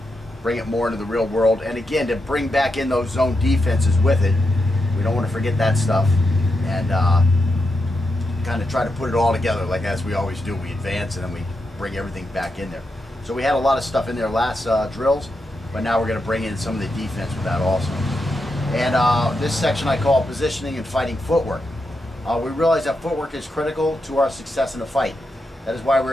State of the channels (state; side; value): normal; both; correlation 0.85